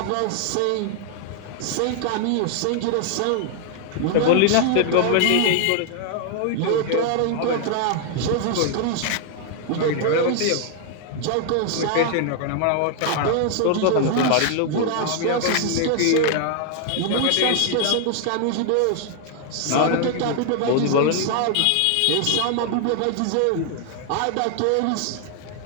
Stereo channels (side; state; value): both; different; correlation 0.00